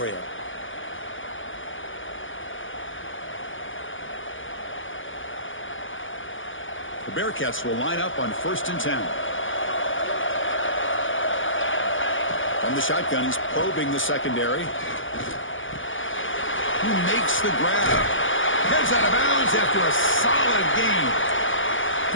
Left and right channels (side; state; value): right; late; 0.57 ms